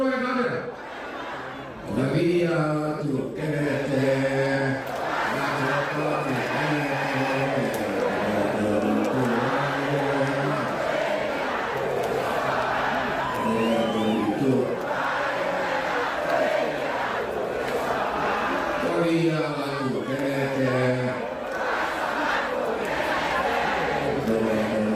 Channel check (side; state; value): both; identical; correlation 1.00